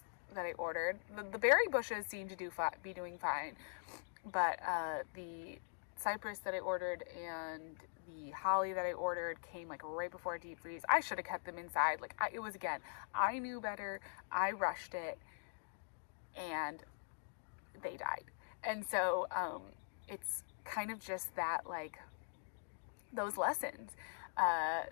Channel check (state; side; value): silent; right; digital silence